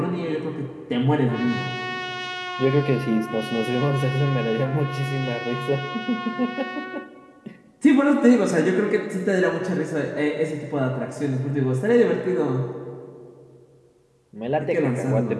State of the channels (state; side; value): identical; both; correlation 1.00